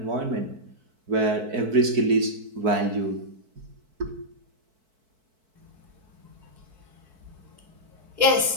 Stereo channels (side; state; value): left; late; 4.6 ms